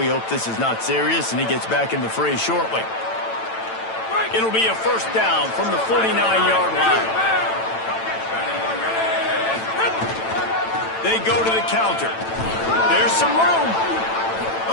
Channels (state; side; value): late; right; 9.0 ms